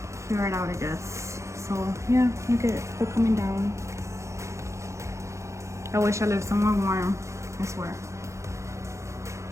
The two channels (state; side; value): late; left; 0.14 ms